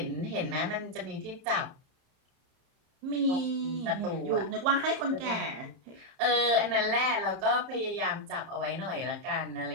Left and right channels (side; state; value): left; late; 30 ms